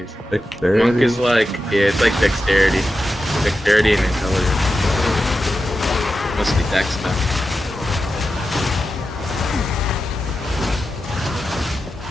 Dexterity? Monk is like, yeah, it's like dexterity. Dexterity and intelligence. Mostly dex stuff.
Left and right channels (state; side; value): normal; both; correlation 0.91